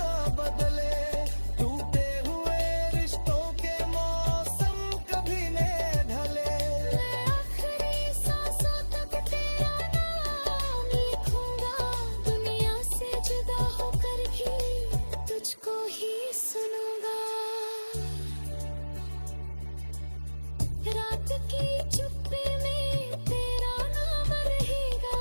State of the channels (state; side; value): inverted; both; correlation -1.00